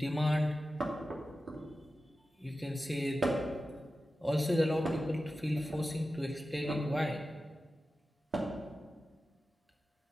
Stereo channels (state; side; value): normal; both; correlation 0.93